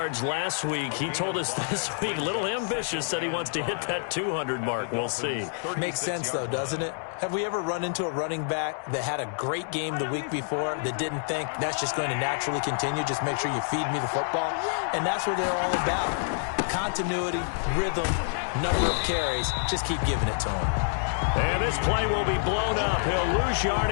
last week. He told us this week, a little ambitious, said he wants to hit that 200 mark. We'll see. Makes sense, though, doesn't it? Have we ever run into a running back that had a great game the week before that didn't think that's just going to naturally continue? Just make sure you feed me the football. And that's what they're all about. Continuity, rhythm, number of carries. Just keep giving it to them. And this play will be blown up. He'll lose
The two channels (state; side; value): silent; right; digital silence